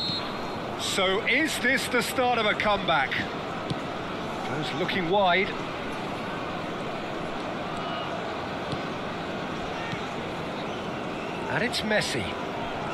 So is this the start of a comeback? Goes looking wide. And it's Messi.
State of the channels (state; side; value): identical; both; correlation 1.00